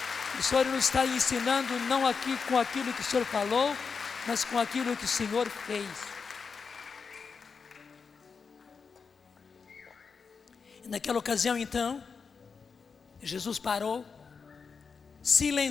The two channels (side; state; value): right; quieter; 5.4 dB